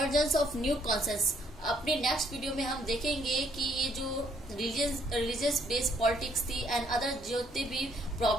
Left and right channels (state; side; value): normal; both; correlation 0.67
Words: of new consciousness. अपने नेक्स्ट वीडियो में हम देखेंगे कि ये जो रिलीजियस बेस्ड पॉलिटिक्स थी एंड अदर जितने भी